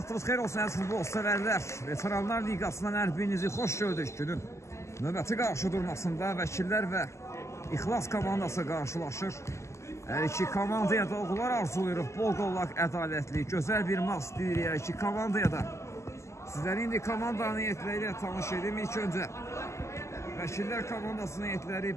xeyir olsun, əziz futbol sevərlər. Veteranlar Liqasından hər birinizi xoş gördük. Günün növbəti qarşı durmasında vəkillər və İxlas komandası qarşılaşır. Hər iki komandaya da uğurlar arzuluyuruq. Bol qollaq, ədalətli, gözəl bir maç deyirik hər iki komandaya da. Sizləri indi komandanın heyətləri ilə tanış edim. İlk öncə vəkillər komandasının heyətləri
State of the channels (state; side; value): late; right; 0.13 ms